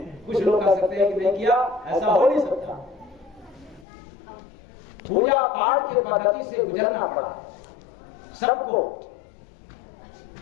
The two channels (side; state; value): right; drops out; at 3.9 s